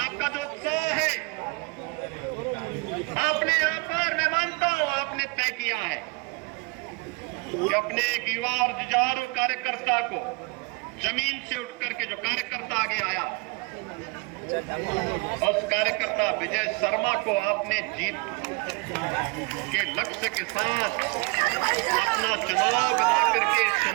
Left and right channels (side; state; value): left; quieter; 28.9 dB